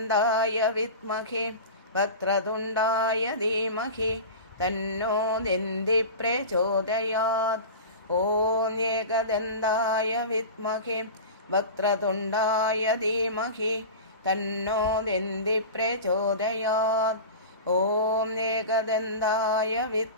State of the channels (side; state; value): both; inverted; correlation -0.30